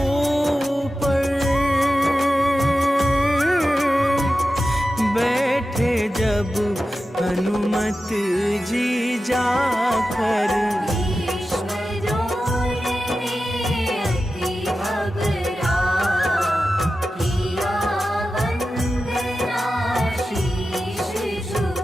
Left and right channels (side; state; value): both; normal; correlation 0.93